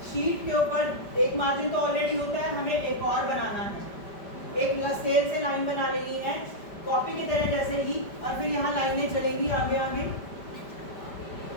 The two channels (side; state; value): right; late; 5.1 ms